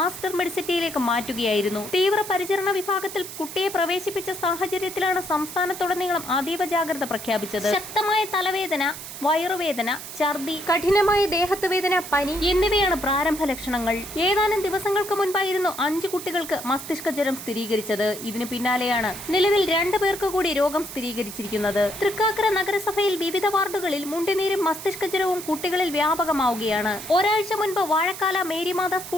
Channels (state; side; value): noise; right; hiss, 11 dB below the sound